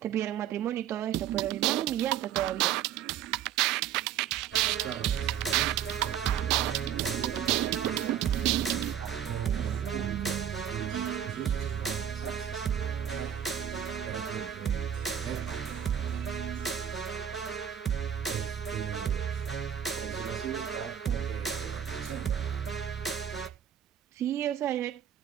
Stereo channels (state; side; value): quieter; left; 9.5 dB